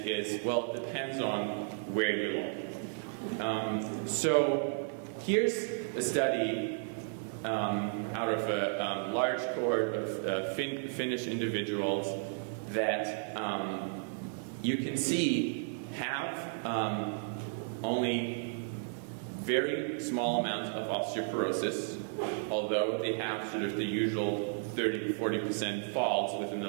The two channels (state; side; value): silent; left; digital silence